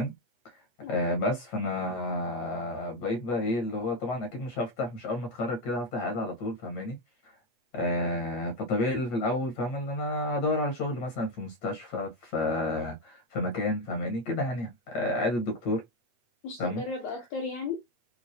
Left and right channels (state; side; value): late; right; 8.3 ms